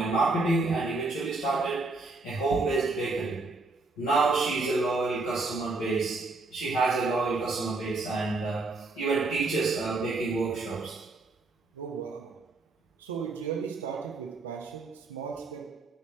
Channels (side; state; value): left; quieter; 3.4 dB